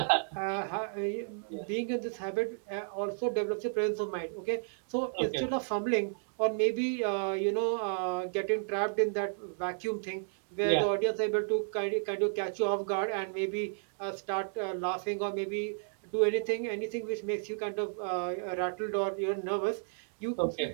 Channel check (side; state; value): left; silent; digital silence